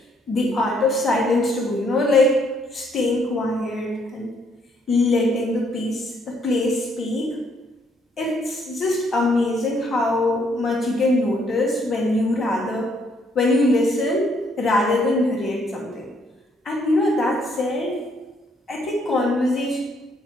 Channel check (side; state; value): both; normal; correlation 0.69